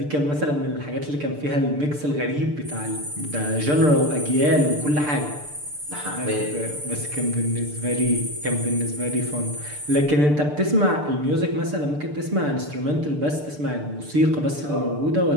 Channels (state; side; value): late; left; 6.8 ms